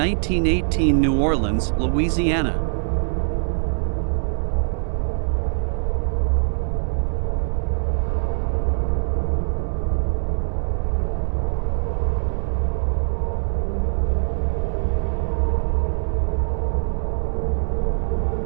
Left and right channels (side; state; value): left; silent; digital silence